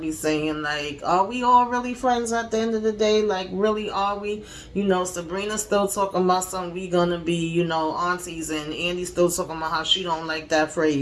saying. Like, are we all really friends at the end of the day? Like, really, are we? Sabrina's still talking about something we gonna be, aunties, and Andy's still talking about how she don't like that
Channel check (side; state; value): both; identical; correlation 1.00